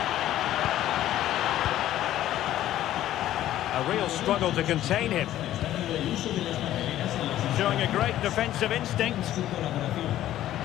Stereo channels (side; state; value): right; quieter; 13.1 dB